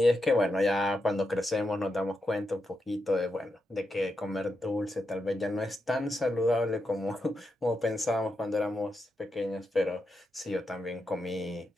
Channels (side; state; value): both; normal; correlation 0.85